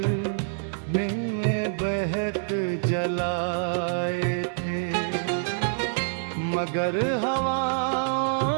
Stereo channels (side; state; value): left; silent; digital silence